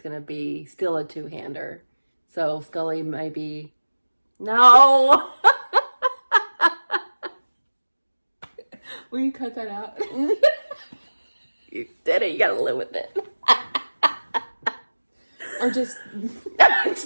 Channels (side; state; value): both; inverted; correlation -1.00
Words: going to be still a two-hander. So Scully maybe... No! Will you cut that out? You did it. You got to live with it. Or just...